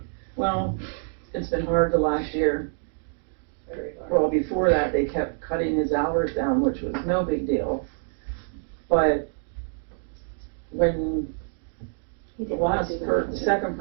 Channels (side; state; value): left; silent; 58 dB below the other